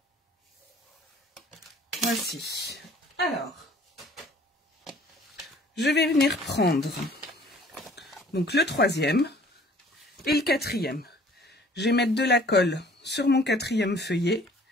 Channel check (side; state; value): both; normal; correlation 0.54